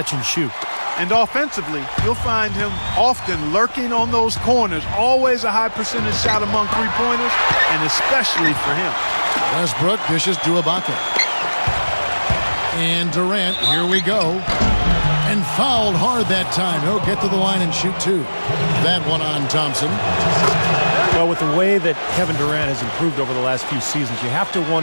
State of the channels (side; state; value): both; inverted; correlation -1.00